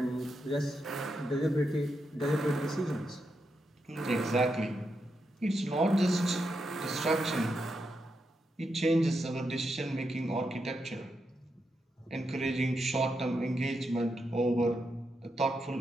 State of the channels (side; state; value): both; normal; correlation 0.84